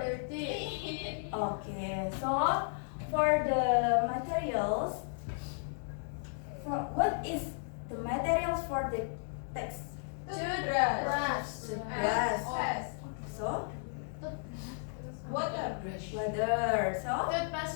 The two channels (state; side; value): silent; right; digital silence